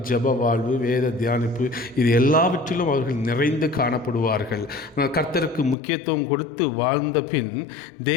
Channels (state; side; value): drops out; right; at 5.8 s